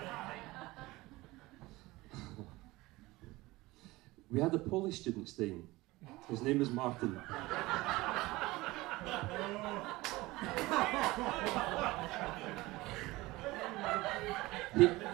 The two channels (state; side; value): quieter; left; 20.2 dB